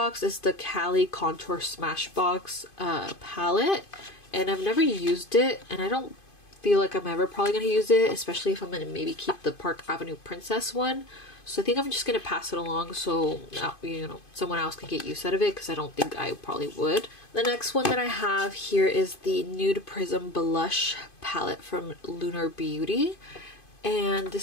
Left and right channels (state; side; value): late; right; 2.5 ms